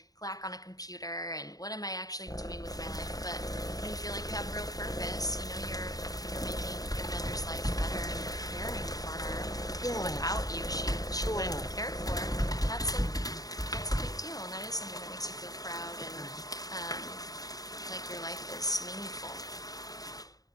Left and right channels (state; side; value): late; right; 0.18 ms